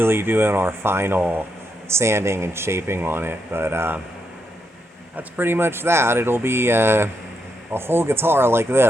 doing our final sanding and shaping on it. But that's pretty much that. It'll be a whole guitar like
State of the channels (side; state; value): both; normal; correlation 0.81